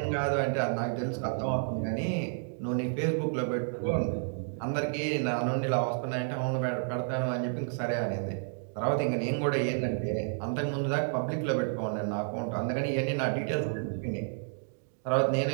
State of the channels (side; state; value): left; silent; digital silence